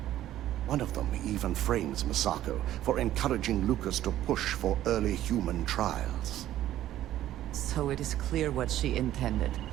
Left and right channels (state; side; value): quieter; left; 13.0 dB